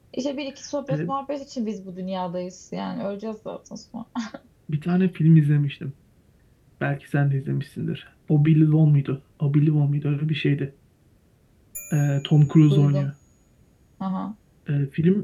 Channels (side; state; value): both; identical; correlation 1.00